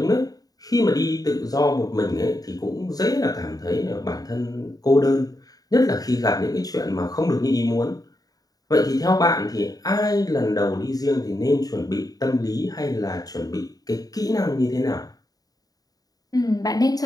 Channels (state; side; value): late; right; 0.18 ms